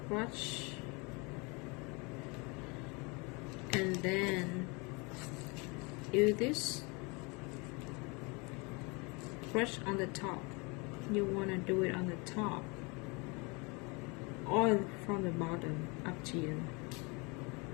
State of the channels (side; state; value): right; quieter; 29.2 dB